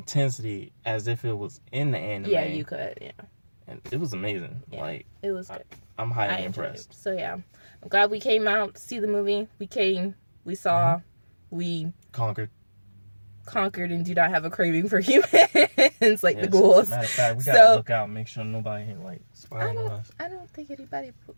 as if it was in the anime. Yeah, you could, yeah. and it was amazing. Yeah, like it was good. I'm highly impressed. So yeah, I'm glad we came out to see the movie. We came, we saw, we conquered, and do not have a craving for humans like the ghouls. Matter of fact, we gotta look out, make sure nobody ain't like spying on us. I don't think anybody.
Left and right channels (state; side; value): inverted; both; correlation -1.00